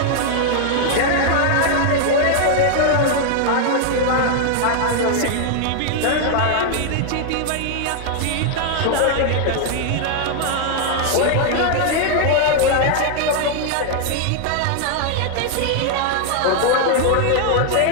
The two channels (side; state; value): both; different; correlation 0.00